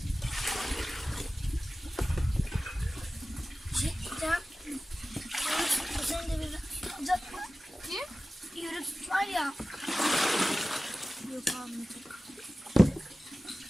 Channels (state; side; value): normal; both; correlation 0.96